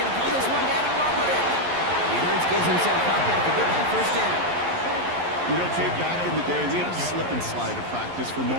to pull this one down and run with it. And Hurts gives himself up after getting that 1st down. You know, Kate, back in the day, we had a slip and slide at practice for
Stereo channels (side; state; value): left; late; 11 ms